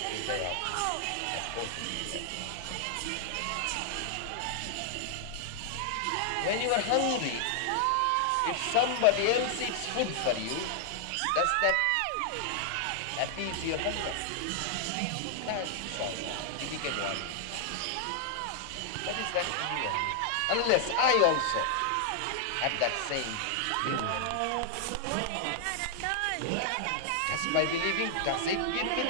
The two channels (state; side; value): different; both; correlation -0.01